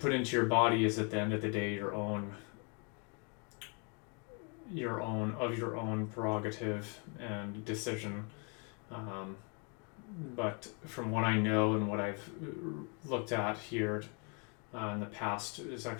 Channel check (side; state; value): right; quieter; 36.0 dB